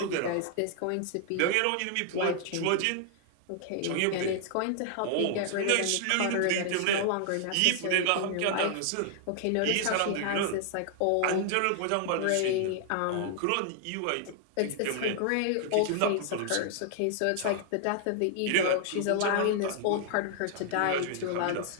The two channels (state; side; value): different; both; correlation 0.00